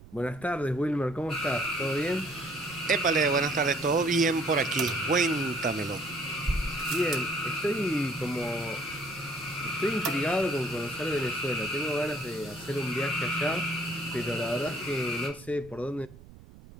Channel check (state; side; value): noise; right; rumble, 20 dB below the sound